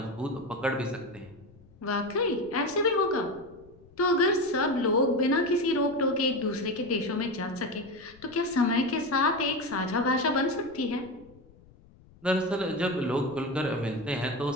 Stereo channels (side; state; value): left; noise; rumble, 25 dB below the sound